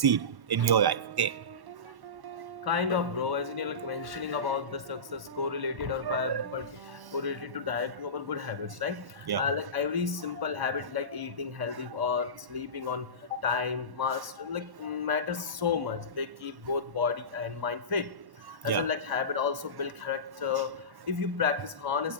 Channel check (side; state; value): left; late; 1.1 ms